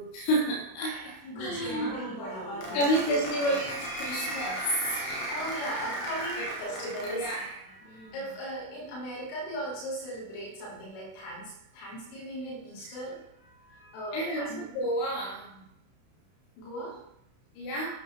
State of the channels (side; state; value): right; late; 32 ms